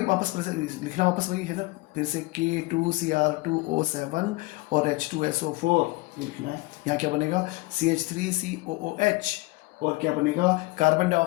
वापस लिखना वापस वही है ना, फिर से K2Cr2O7 और H2SO4 ये लिखना है। यहाँ क्या बनेगा? CH3COOH, और क्या बनेगा? कार्बन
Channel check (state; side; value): quieter; right; 22.2 dB